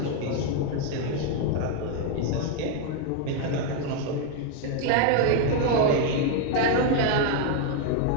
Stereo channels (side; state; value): both; different; correlation 0.01